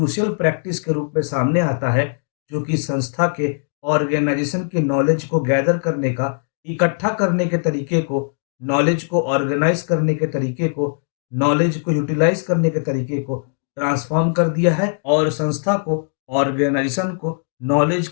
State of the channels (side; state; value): right; silent; digital silence